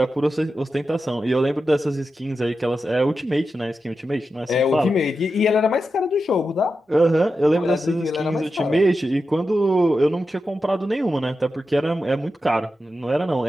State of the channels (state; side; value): normal; both; correlation 0.90